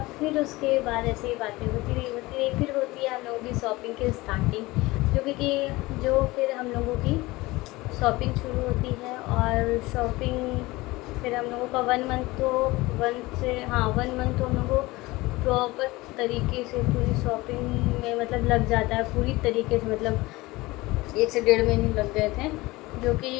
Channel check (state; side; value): quieter; right; 20.8 dB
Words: फिर उसके बाद ऐसे ही बातें होती रही। फिर होती है हम लोगों की शॉपिंग की स्टार्टिंग, जो फिर हम लोगों की शॉपिंग शुरू होती है। और शॉपिंग फिर हम लोगों का 1 मंथ तो 1 मंथ तो हम लोगों को प्रॉपर तरीके से पूरी शॉपिंग में मतलब लग जाता है, पूरी तरीके से, मतलब 1 से 1.5 महीने लग गए थे, जो